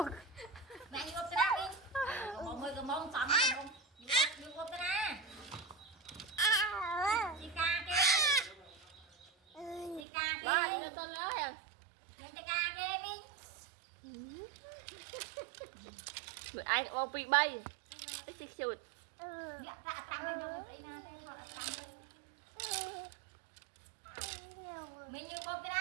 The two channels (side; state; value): left; drops out; at 10.0 s